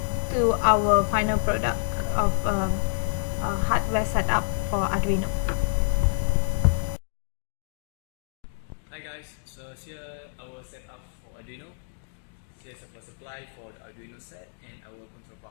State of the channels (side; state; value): right; silent; digital silence